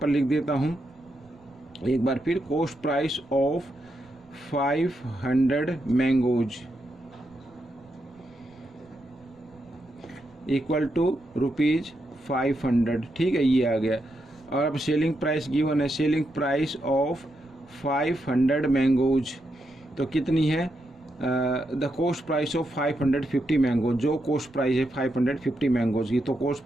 लिख देता हूँ एक बार फिर, cost price of 500 mangoes equal to ₹500, ठीक है, ये आ गया। और अब सेलिंग प्राइस गिवन है, सेलिंग प्राइस ऑफ 500 मैंगोज तो कितनी है, the cost price of 550 mangoes, जो कॉस्ट प्राइस है 550 मैंगोज की, तो कॉस्ट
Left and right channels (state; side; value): noise; right; rumble, 29 dB below the sound